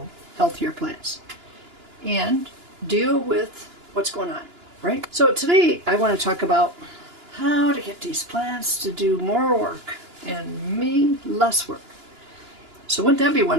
healthier plants and deal with what's going on, right? So today I want to talk about how to get these plants to do more work and me less work. So wouldn't that be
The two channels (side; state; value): left; late; 2.9 ms